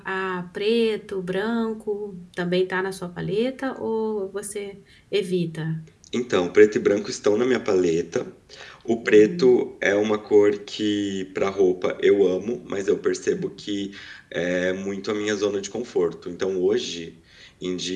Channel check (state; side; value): identical; both; correlation 1.00